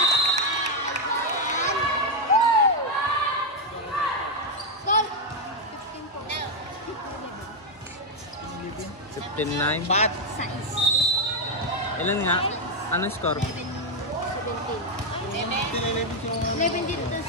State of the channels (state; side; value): normal; both; correlation 0.02